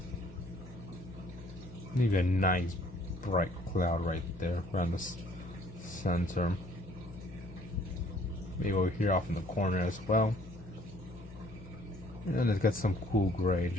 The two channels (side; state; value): both; normal; correlation 0.59